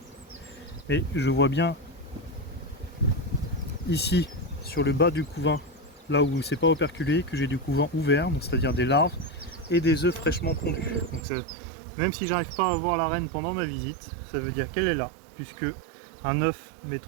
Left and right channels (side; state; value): left; drops out; at 11.2 s